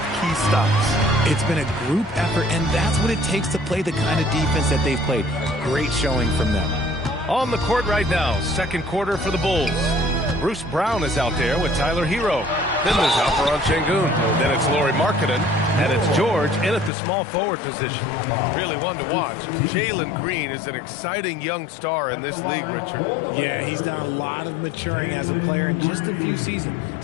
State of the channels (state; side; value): drops out; right; at 16.9 s